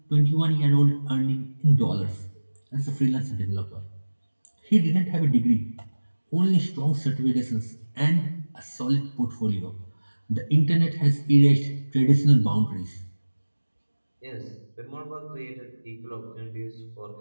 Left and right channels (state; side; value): inverted; both; correlation -1.00